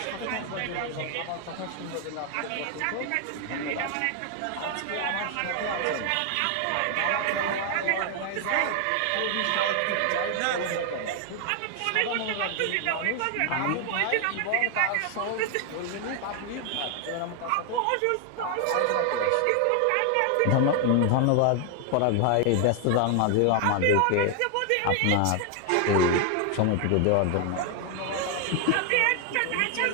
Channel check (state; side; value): different; both; correlation 0.00